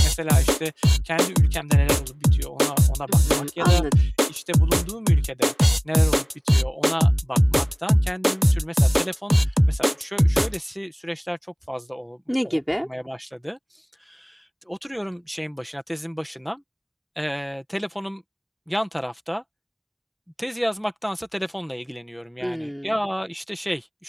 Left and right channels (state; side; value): identical; both; correlation 1.00